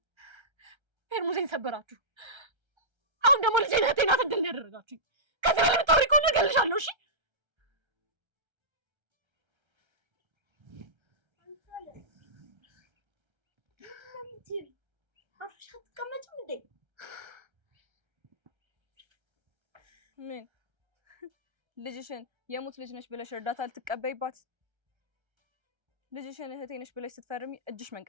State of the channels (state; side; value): late; left; 1.3 ms